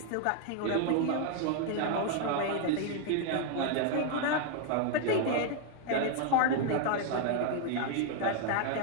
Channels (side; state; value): both; different; correlation 0.00